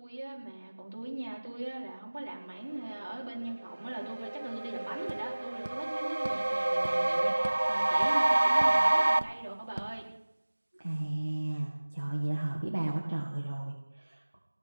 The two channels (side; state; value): both; inverted; correlation -1.00